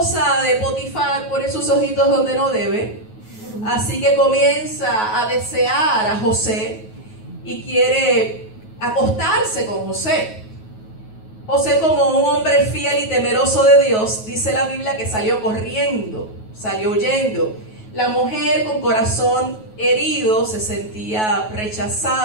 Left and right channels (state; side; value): late; right; 9.3 ms